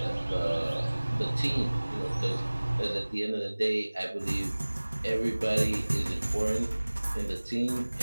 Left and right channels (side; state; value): both; inverted; correlation -1.00